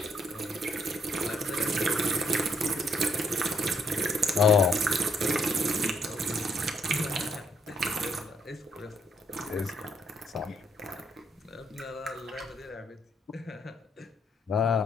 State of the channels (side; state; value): both; normal; correlation 0.72